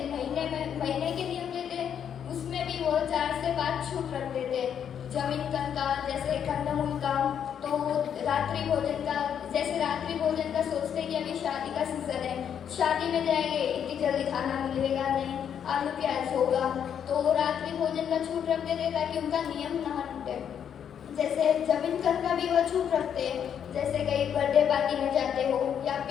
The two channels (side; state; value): right; quieter; 8.5 dB